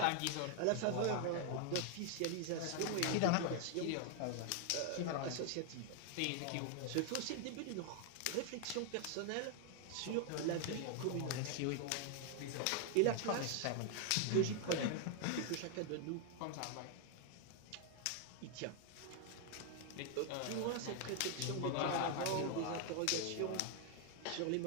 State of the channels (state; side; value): different; both; correlation 0.00